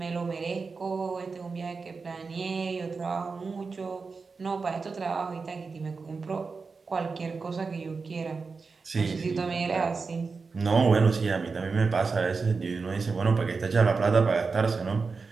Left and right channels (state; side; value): quieter; left; 4.6 dB